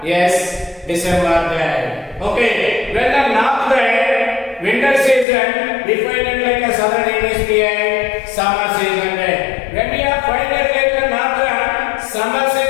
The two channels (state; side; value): drops out; right; at 5.2 s